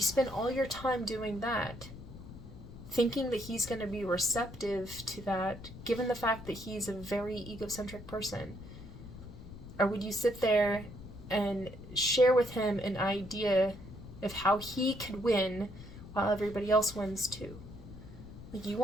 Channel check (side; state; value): left; noise; rumble, 14 dB below the sound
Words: spend all your time doing that, thinking that he's going to be receptive to that, given the fact that he's a very egocentric person? Or would you sit there and share with him an idea of how he could win while everybody else wins too? Like, you